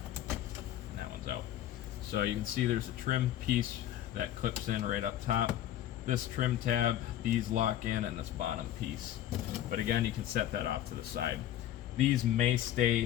And that one's out. So you can see there's a trim piece that clips in right up top. This trim tab, these lock in, and this bottom piece. But again, you can set that off to the side. These may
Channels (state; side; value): quieter; right; 12.2 dB